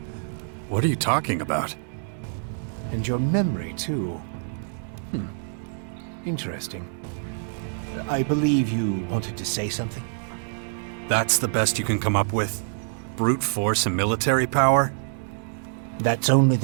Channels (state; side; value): silent; left; digital silence